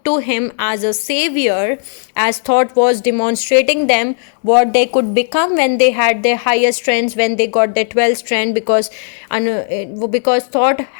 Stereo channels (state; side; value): silent; right; digital silence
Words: to him as a savior, as Thoth was demonstrating them what they could become when they had their higher strengths, when they got their 12 strand, because Thoth